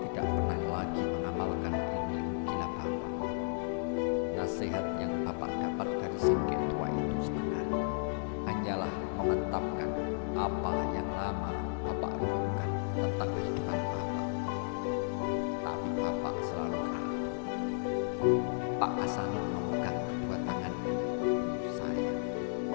tidak pernah lagi mengamalkan ilmu gila bapak. Nasihat yang bapak dapat dari si tua itu sebenarnya hanyalah memantapkan apa yang lama bapak renungkan tentang kehidupan bapak. Tapi bapak selalu ragu. Pak Hasanul memegang kedua tangan saya.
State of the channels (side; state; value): right; silent; digital silence